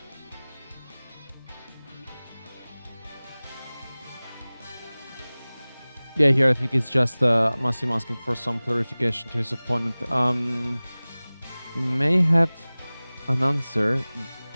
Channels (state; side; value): inverted; both; correlation -0.99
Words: Yeah, here I think it's just Massimo asking for some clarification to his opponent. He may have an answer,